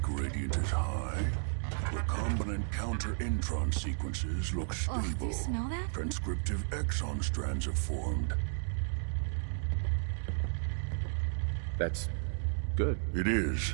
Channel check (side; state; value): left; silent; digital silence